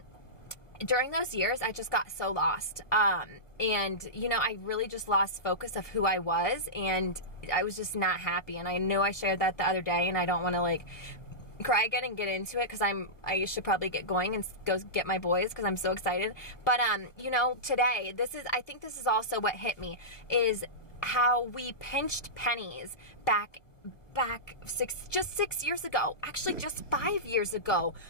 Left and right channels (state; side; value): late; right; 1.1 ms